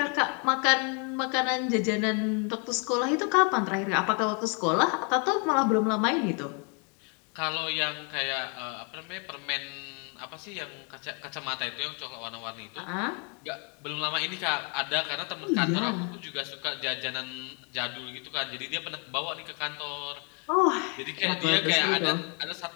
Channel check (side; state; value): right; quieter; 36.2 dB